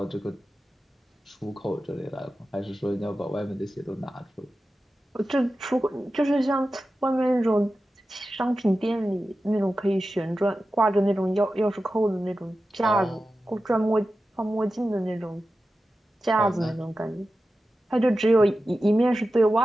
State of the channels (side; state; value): both; normal; correlation 0.93